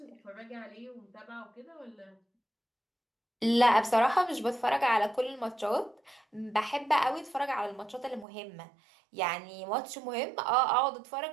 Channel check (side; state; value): left; drops out; at 8.2 s